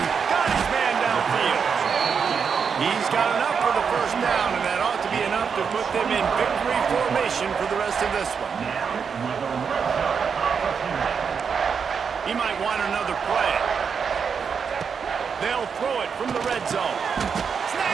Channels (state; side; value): quieter; left; 6.3 dB